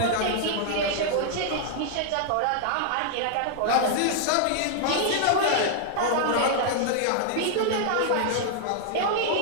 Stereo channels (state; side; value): different; both; correlation -0.01